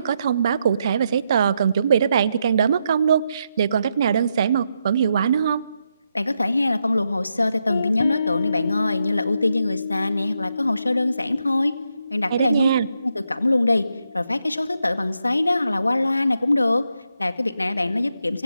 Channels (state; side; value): inverted; both; correlation -0.82